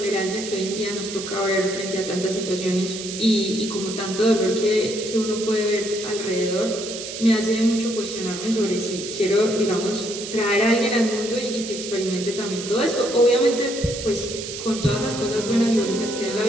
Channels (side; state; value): right; noise; hiss, 8 dB below the sound